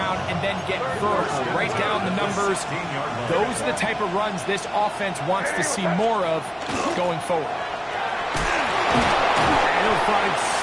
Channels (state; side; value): identical; both; correlation 1.00